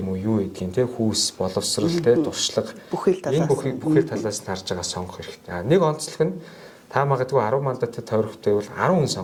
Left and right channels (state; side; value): identical; both; correlation 1.00